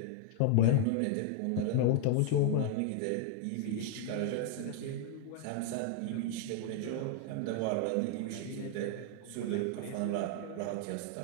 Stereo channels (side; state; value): both; different; correlation 0.00